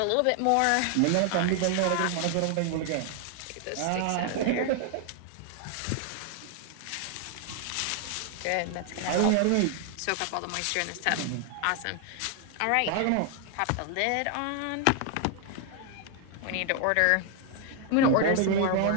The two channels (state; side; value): different; both; correlation 0.00